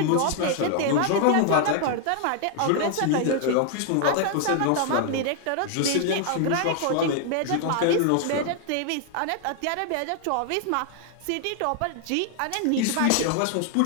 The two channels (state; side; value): different; both; correlation 0.00